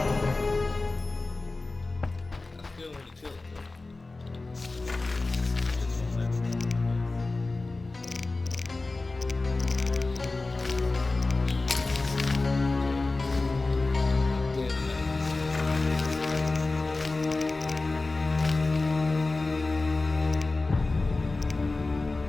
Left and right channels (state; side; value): quieter; right; 3.4 dB